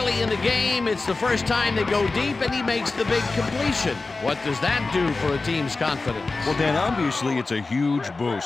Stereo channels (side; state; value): right; quieter; 3.6 dB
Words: in the game. It's the first time they go deep, and he makes the big completion. What does that do for a team's confidence? Well, Dan, obviously it's a huge